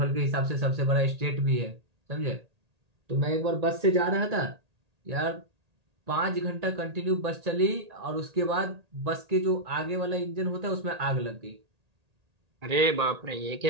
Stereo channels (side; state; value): left; late; 1.8 ms